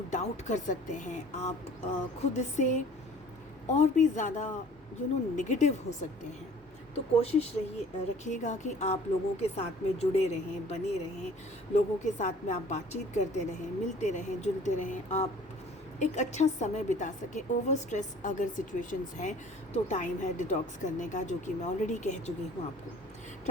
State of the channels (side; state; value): both; normal; correlation 0.50